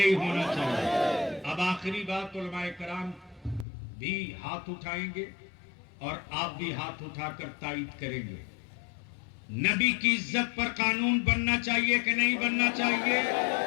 होना चाहिए? अब आखिरी बात, उलमाए कराम भी हाथ उठाएंगे और आप भी हाथ उठाकर तायीद करेंगे। नबी की इज्जत पर कानून बनना चाहिए कि नहीं बनना चाहिए?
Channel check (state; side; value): drops out; right; at 3.7 s